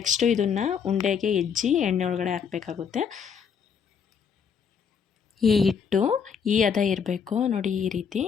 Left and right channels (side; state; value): right; quieter; 6.8 dB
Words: ಇದನ್ನು ಉಂಡೆಗೆ ಎಜ್ಜಿ ಎಣ್ಣೆ ಒಳಗಡೆ ಹಾಕಬೇಕಾಗುತ್ತೆ. ಈ ಹಿಟ್ಟು ಈ ಹದ ಇರಬೇಕು. ನೋಡಿ ಈ